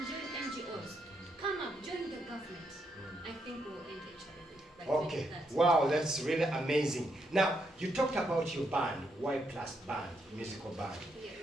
join NGOs. Come up, join the government. I think we'll end HIV. Okay, wow, that's really amazing. Now, you talked about your band, Y Plus Band, musical band.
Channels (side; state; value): both; normal; correlation 0.78